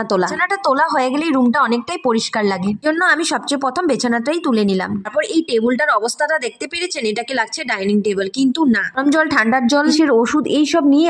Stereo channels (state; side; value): identical; both; correlation 1.00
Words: তোলা। বিছানাটা তোলা হয়ে গেলেই রুমটা অনেকটাই পরিষ্কার লাগে। জন্য আমি সবচেয়ে প্রথম বিছানাটাই তুলে নিলাম। তারপর এই টেবিলটার অবস্থাটা দেখতে পেরেছেন, এটাকে লাগছে ডাইনিং টেবিল, কিন্তু না, গরম জল, ঠান্ডার জল, ওষুধ এইসব নিয়ে